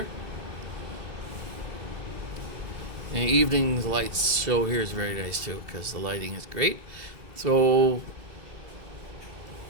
And evening lights show here is very nice too, because the lighting is great. So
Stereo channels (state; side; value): late; left; 2.7 ms